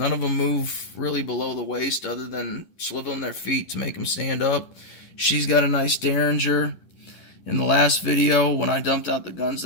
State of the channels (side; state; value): right; late; 11 ms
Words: of them move really below the waist other than swiveling their feet to make them stand up. She's got a nice derringer. In the last video, when I dumped out the guns